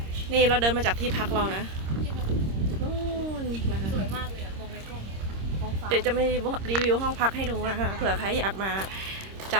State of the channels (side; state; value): left; late; 26 ms